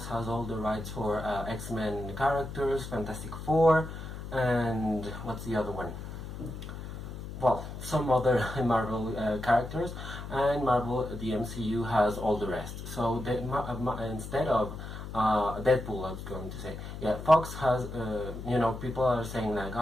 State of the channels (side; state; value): left; noise; hum, 9 dB below the sound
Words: has all the rights for X-Men characters, Fantastic Four, and what's the other one? Well, some other Marvel characters, and Marvel, the MCU, has all the rest. So instead of Deadpool, I was going to say, yeah, Fox has, people are saying like,